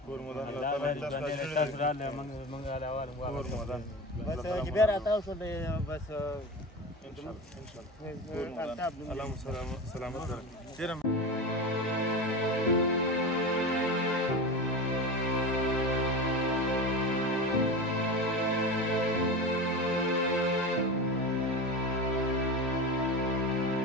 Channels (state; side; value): normal; both; correlation 0.26